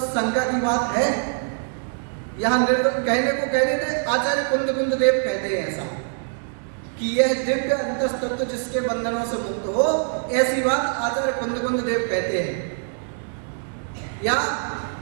शंका की बात है? यहां कहने को कह रहे थे, आचार्य कुंद देव कहते हैं ऐसा कि यह दिव्य अंतस्तत्व जिसके बंधनों से मुक्त हो, ऐसी बात आचार्य कुंद देव कहते हैं, या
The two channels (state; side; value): silent; left; 63 dB below the other